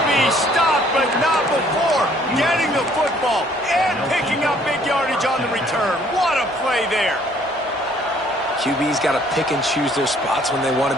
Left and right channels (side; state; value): both; normal; correlation 0.61